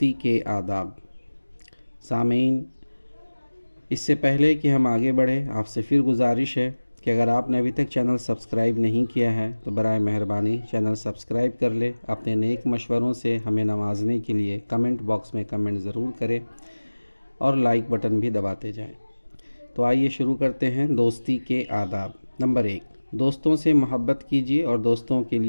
کے آداب۔ سامعین، اس سے پہلے کہ ہم آگے بڑھیں، آپ سے پھر گزارش ہے کہ اگر آپ نے ابھی تک چینل سبسکرائب نہیں کیا ہے تو برائے مہربانی چینل سبسکرائب کر لے۔ اپنے نیک مشوروں سے ہمیں نوازنے کے لیے کمنٹ باکس میں کمنٹ ضرور کریں اور لائک بٹن بھی دباتے جائیں۔ تو آئیے شروع کرتے ہیں دوستی کے آداب۔ نمبر 1، دوستوں سے محبت کیجیے اور دوستوں کے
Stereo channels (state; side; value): inverted; both; correlation -1.00